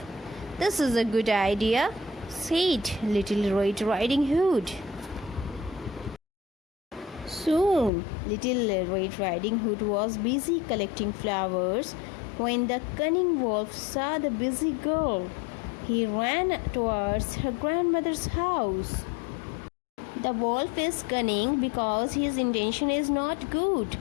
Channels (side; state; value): right; drops out; at 7.9 s